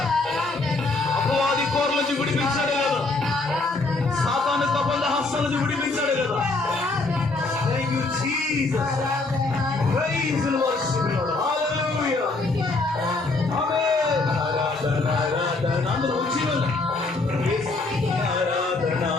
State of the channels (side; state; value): right; quieter; 3.4 dB